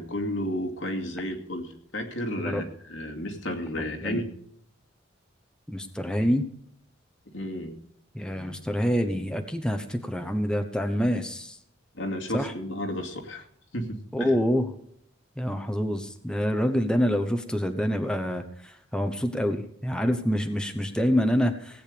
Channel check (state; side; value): normal; both; correlation 0.84